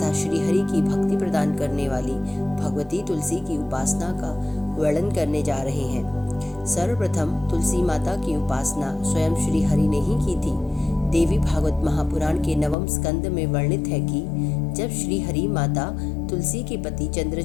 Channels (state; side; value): drops out; right; at 12.8 s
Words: श्री हरि की भक्ति प्रदान करने वाली भगवती तुलसी की उपासना का वर्णन करने जा रहे हैं। सर्वप्रथम तुलसी माता की उपासना स्वयं श्री हरि ने ही की थी। देवी भागवत महापुराण के 9वें स्कंद में वर्णित है कि जब श्री हरि माता तुलसी के पति